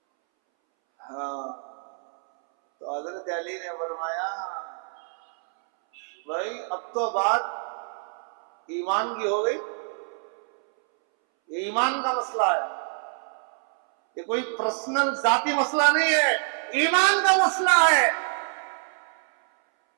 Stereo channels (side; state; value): left; silent; 61 dB below the other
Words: ہاں تو حضرت علی نے فرمایا بھائی اب تو بات ایمان کی ہو گئی. یہ ایمان کا مسئلہ ہے, یہ کوئی پرسنل ذاتی مسئلہ نہیں ہے, ایمان کا مسئلہ ہے.